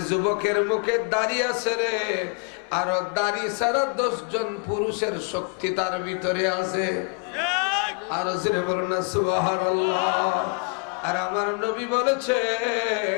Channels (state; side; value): quieter; right; 35.9 dB